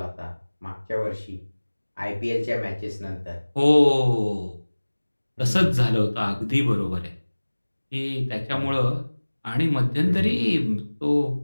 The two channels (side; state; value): both; inverted; correlation -1.00